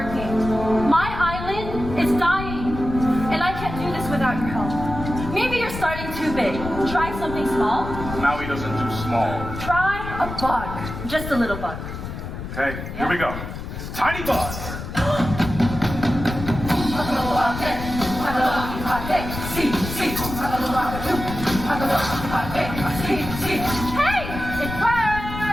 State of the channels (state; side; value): noise; left; rumble, 8 dB below the sound